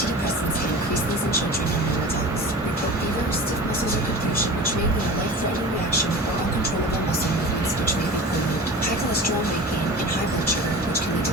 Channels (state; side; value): normal; both; correlation 0.35